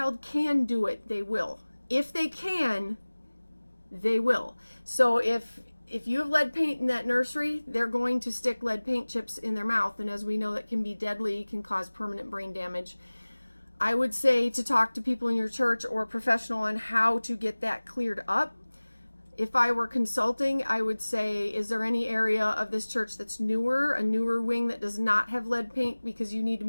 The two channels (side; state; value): both; inverted; correlation -1.00